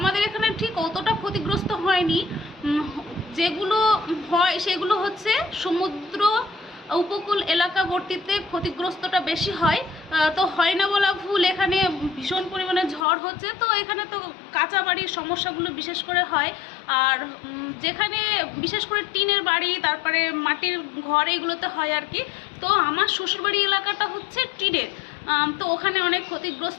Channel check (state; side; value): drops out; right; at 13.1 s